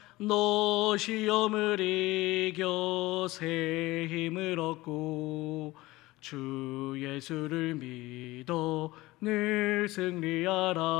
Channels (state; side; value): quieter; right; 19.4 dB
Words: 너 시험을 이겨 새 힘을 얻고 주 예수를 믿어 늘